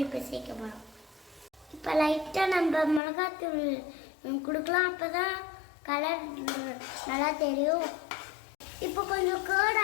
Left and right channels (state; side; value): drops out; right; at 3.0 s